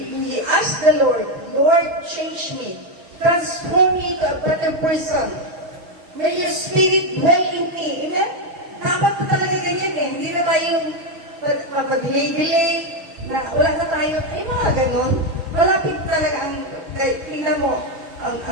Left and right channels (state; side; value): late; left; 6.1 ms